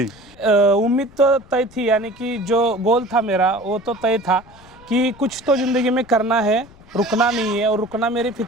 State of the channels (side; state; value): left; noise; rumble, 24 dB below the sound